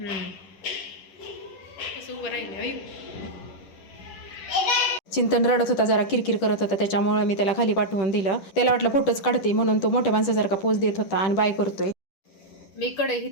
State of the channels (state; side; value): late; right; 10 ms